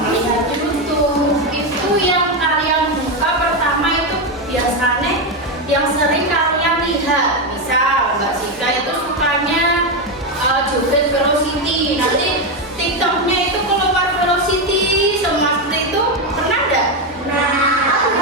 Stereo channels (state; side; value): normal; both; correlation 0.09